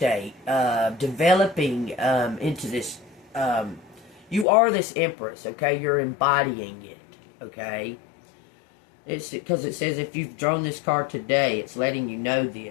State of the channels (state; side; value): drops out; right; at 4.5 s